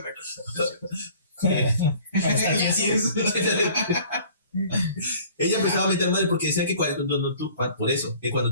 cosa. Así es. Ella empezaba a meter madre porque decía que por eso, que cuando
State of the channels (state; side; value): inverted; both; correlation -0.50